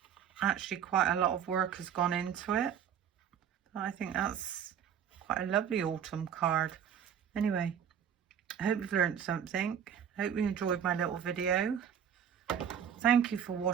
actually quite a lot of work has gone into it. I think that's quite a lovely autumn card. Anyway, I hope you've learned something. Hope you enjoyed my little video. Thank you for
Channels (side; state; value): left; quieter; 8.6 dB